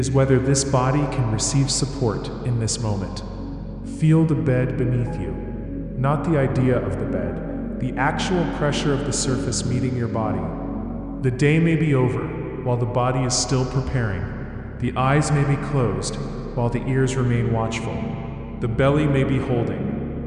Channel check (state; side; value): identical; both; correlation 1.00